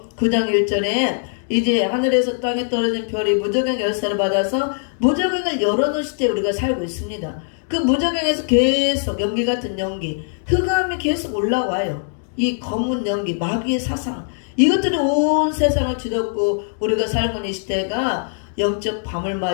9장 1절에 이제 하늘에서 땅에 떨어진 별이 무저갱 열쇠를 받아서 무저갱을 열어놓은 시대에 우리가 살고 있습니다. 그 무저갱에서 계속 연기 같은 연기, 흑암이 계속 올라와요. 이 검은 연기, 마귀의 사상, 이것들이 온 세상을 뒤덮고 우리가 살고 있는 이 시대가 영적 밤을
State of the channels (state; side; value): silent; right; digital silence